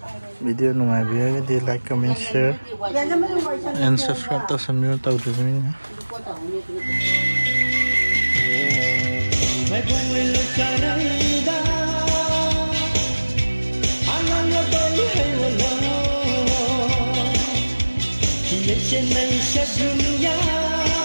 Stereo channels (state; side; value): inverted; both; correlation -1.00